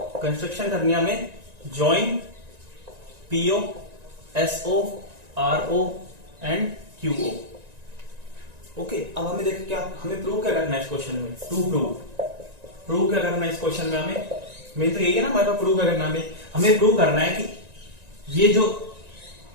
करनी है हमें join PO SO RO and QO, okay. अब हमें देखो क्या, हमें प्रूव क्या करना है इस क्वेश्चन में, प्रूव क्या करना है इस क्वेश्चन में हमें, मेन तो यही है ना हमारे पास, प्रूव करना हमें प्रूव करना है कि ये जो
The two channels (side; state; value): left; late; 1.9 ms